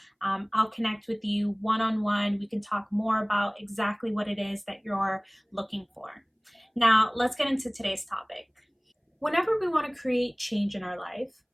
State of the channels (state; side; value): identical; both; correlation 1.00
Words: I'll connect with you one-on-one. We can talk more about exactly what it is that you're looking for. Now, let's get into today's topic. Whenever we want to create change in our life,